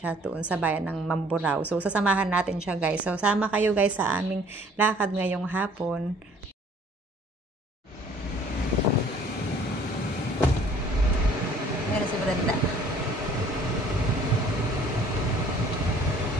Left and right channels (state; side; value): normal; both; correlation 0.56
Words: doon sa bayan ng Mamburao. So, sasamahan natin siya guys. So, sama kayo guys sa aming lakad ngayong hapon. Meron si Brenda.